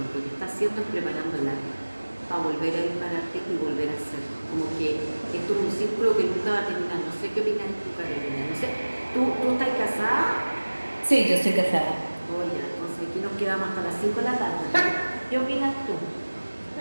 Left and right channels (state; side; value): inverted; both; correlation -1.00